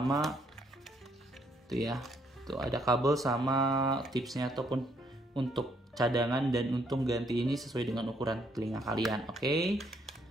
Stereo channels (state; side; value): normal; both; correlation 0.70